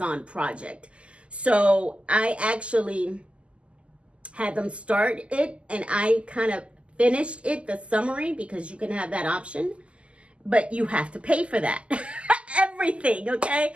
project. So I actually had them start it and I kind of finished it, the summary, because you can have that option, but you have to pay for that. Everything, okay?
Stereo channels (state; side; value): late; left; 0.056 ms